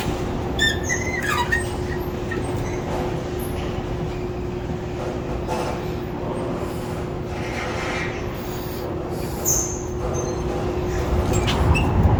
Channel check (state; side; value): identical; both; correlation 1.00